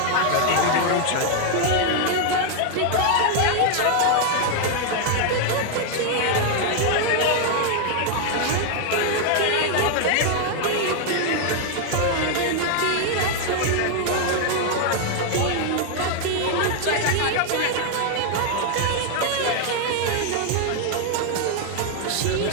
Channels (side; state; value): both; different; correlation 0.00